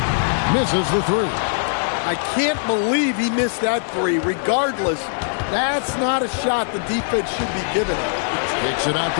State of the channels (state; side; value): silent; right; digital silence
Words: Misses the 3. I can't believe he missed that 3. Regardless, that's not a shot the defense should be giving him. Takes it out